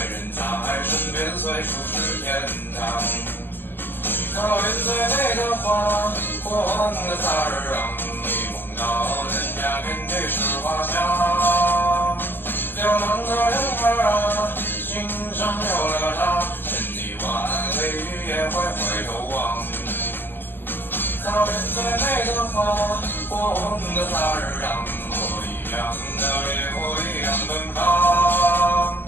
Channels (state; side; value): late; right; 0.099 ms